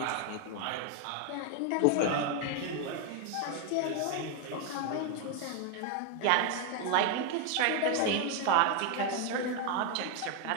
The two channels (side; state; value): both; different; correlation 0.01